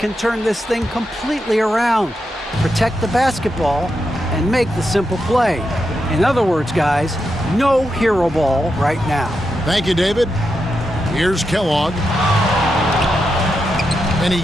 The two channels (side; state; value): both; normal; correlation 0.86